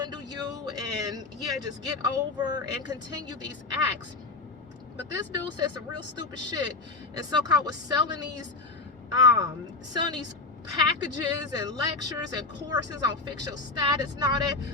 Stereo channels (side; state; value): right; quieter; 3.7 dB